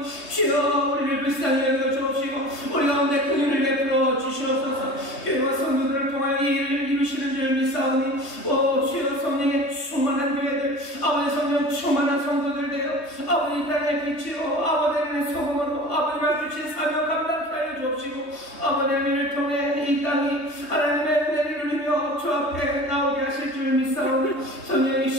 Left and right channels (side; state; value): right; late; 3.2 ms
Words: 주여, 우리를 불쌍히 여겨 주옵시고 우리 가운데 긍휼을 베풀어 주시옵소서. 교회와 성도들을 통하여 이 일을 이루시는 줄 믿사오니 주여, 성령의 충만한 교회들 아버지 성령 충만한 성도들 되어 아버지 땅의 빛으로 아버지 하나님의 소금으로 아버지가 주신 사명 감당케 하여 주옵시고 아버지 하나님을 통해 이 땅이 하나님의 은혜를 누리며 주 앞에 나오게 하실 줄 믿사오니